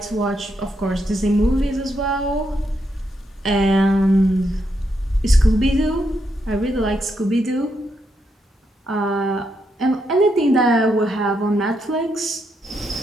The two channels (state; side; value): normal; both; correlation 0.80